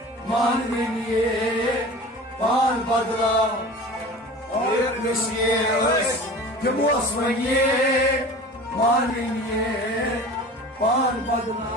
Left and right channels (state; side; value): normal; both; correlation 0.38